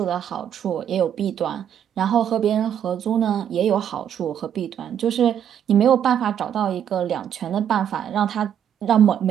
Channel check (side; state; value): left; quieter; 9.3 dB